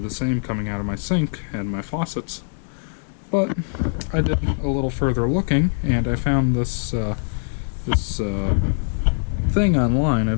same coming out of my sink and my faucets. But I did a little further looking, and I found this thing online. I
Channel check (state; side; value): silent; right; 64 dB below the other